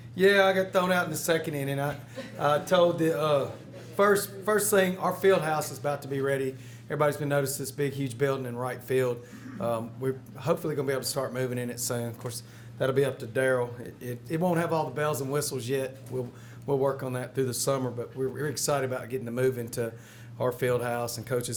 yeah, I got thrown out in the second inning. I told the first thing, our field house is about to be ready. Everybody's been noticing this big, huge building in right field. We're hopefully going to be able to start moving in it soon. Of course, that'll be up to Daryl. It won't have all the bells and whistles yet. We'll work on that through the summer, but we're excited about getting to move into our field house and coaches'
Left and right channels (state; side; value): identical; both; correlation 1.00